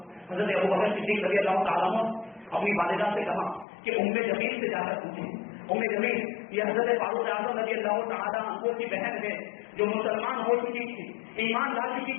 حضرت ابوبکر صدیق رضی اللہ تعالیٰ عنہ اپنی والدہ سے کہا کہ ام جمیل سے جا کر پوچھیں، ام جمیل یہ حضرت فاروق اعظم رضی اللہ تعالیٰ عنہ کی بہن ہے جو مسلمان ہو چکی تھی، ایمان لا چکی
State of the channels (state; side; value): drops out; right; at 3.7 s